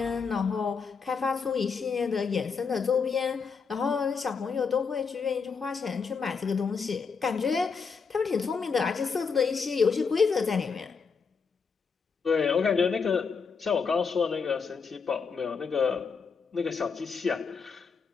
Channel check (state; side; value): quieter; right; 5.5 dB